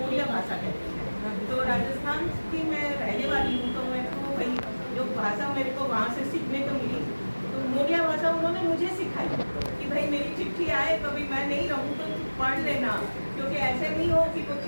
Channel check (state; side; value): inverted; both; correlation -1.00